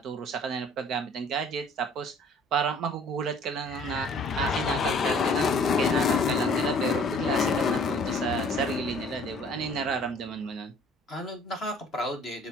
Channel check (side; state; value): both; normal; correlation 0.54